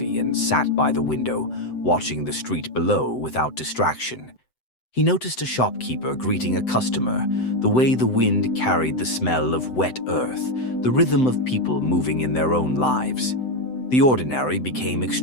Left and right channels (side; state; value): right; late; 7.8 ms